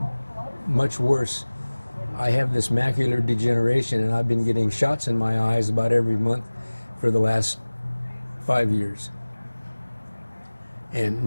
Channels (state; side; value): inverted; both; correlation -1.00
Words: much worse. I have this macular degeneration, and I've been getting shots in my eyes about every month for the last 5 years. And